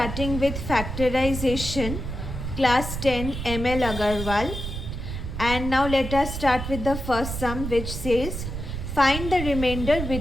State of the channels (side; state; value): right; noise; rumble, 6 dB below the sound